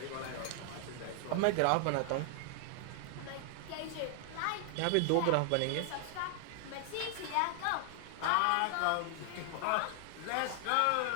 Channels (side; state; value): both; different; correlation 0.00